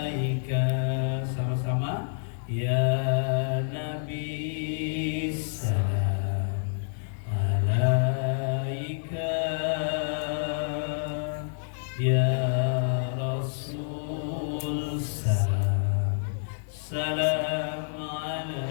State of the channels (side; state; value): right; silent; digital silence